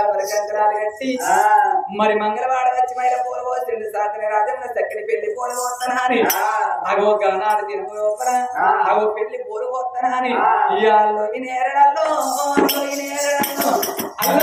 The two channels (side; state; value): both; identical; correlation 1.00